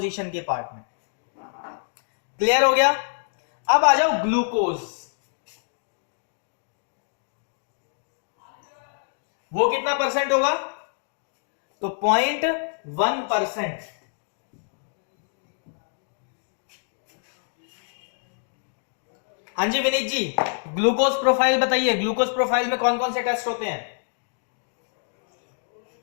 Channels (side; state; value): right; silent; digital silence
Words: के पार्ट में। क्लियर हो गया? अब आ जाओ ग्लूकोज। वो कितना परसेंट होगा? तो 0.1%। हाँ जी विनीत जी, ग्लूकोज प्रोफाइल बताइए, ग्लूकोज प्रोफाइल में कौन कौन से टेस्ट होते हैं?